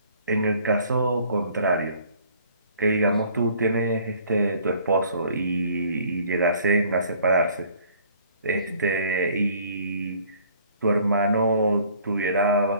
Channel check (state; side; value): inverted; both; correlation -0.57